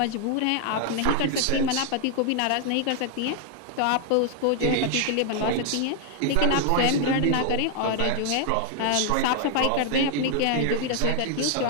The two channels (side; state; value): both; different; correlation 0.00